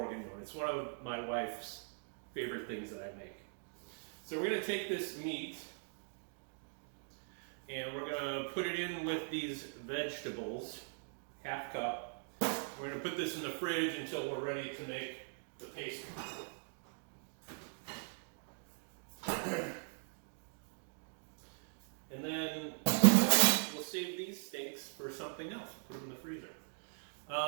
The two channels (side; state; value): left; silent; digital silence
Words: It's one of my wife's favorite things that I make. So we're going to take this meat and we're going to put it in with these vegetables, half cup. We're going to put this in the fridge until we're ready to make the pastry. And then we'll save these steaks for something else. Put them in the freezer.